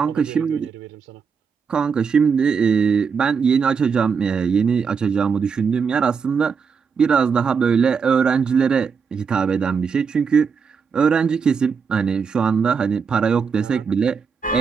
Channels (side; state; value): left; quieter; 5.9 dB